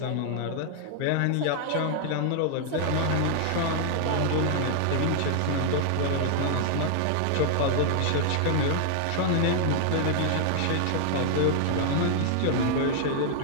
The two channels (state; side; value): different; both; correlation 0.00